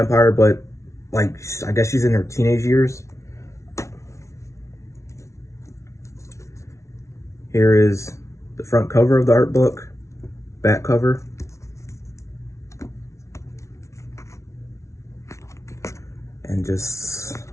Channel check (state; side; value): late; right; 0.14 ms